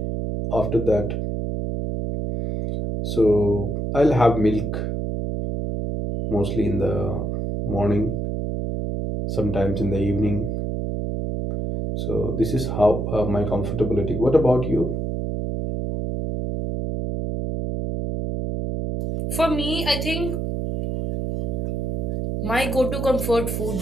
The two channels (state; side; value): noise; right; hum, 2 dB below the sound